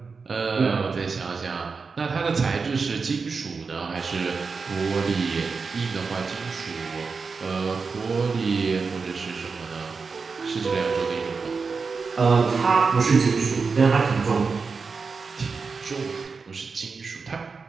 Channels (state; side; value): quieter; left; 4.8 dB